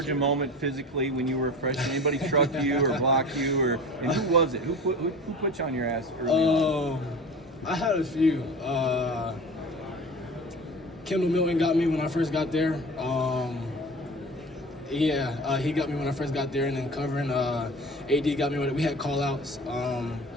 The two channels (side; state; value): both; normal; correlation 0.37